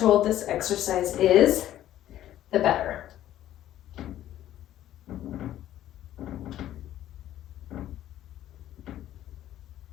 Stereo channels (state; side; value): quieter; right; 12.7 dB